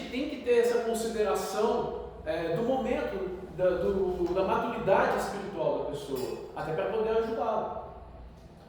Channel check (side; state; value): both; identical; correlation 1.00